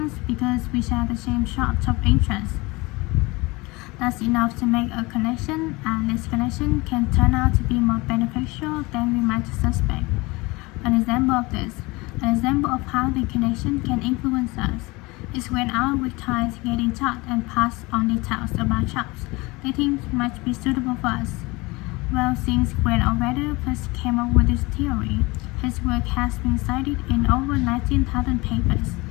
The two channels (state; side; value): quieter; right; 23.6 dB